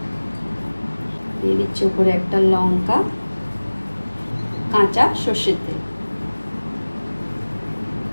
দিয়ে দিচ্ছি উপরে একটা লঙ্কা, কাঁচা সর্ষের তেল।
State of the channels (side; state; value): both; inverted; correlation -1.00